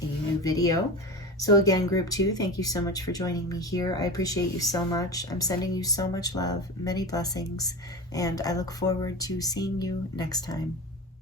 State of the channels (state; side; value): normal; both; correlation 0.27